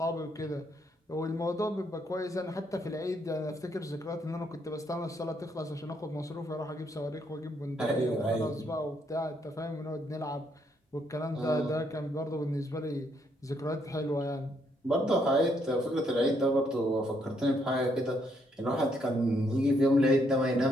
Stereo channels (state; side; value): normal; both; correlation 0.73